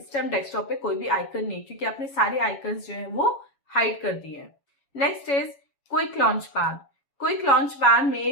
टाइम डेस्कटॉप पे कोई भी आइकन नहीं, क्योंकि आपने सारे आइकन्स जो है वो हाइड कर दिए हैं। Next is quick launch pad. Quick launch pad में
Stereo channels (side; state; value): right; late; 7.2 ms